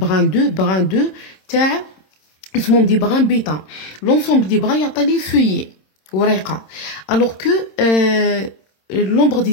2 تاع اسمهم des brins bêta. L'ensemble des brins يعطي feuillet ورقة. Alors que l'ombre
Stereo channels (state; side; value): late; right; 26 ms